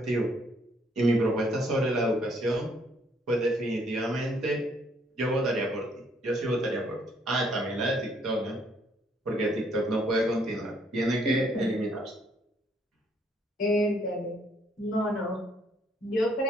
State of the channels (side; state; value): both; normal; correlation 0.67